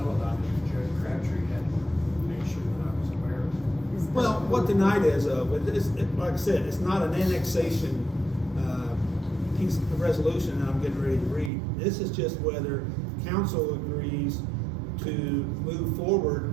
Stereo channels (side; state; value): left; drops out; at 11.5 s